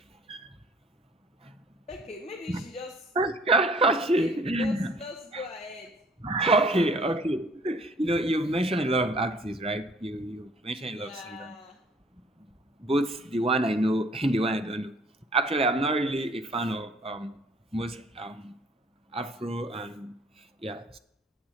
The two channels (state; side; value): normal; both; correlation 0.56